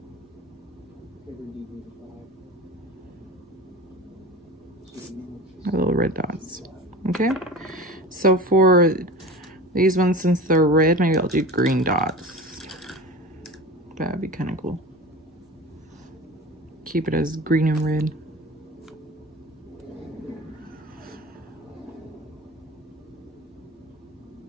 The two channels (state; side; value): normal; both; correlation 0.33